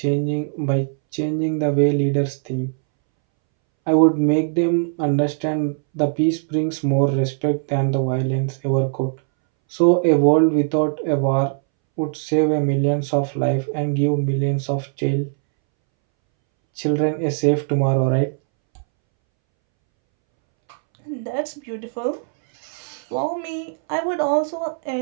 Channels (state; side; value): silent; left; 64 dB below the other